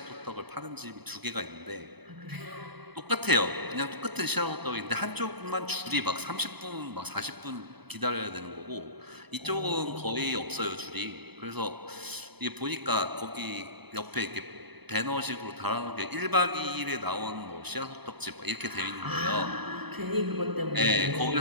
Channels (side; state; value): left; late; 0.98 ms